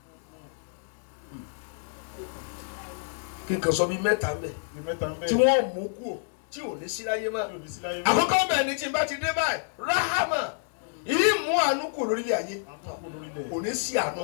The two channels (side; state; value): right; silent; digital silence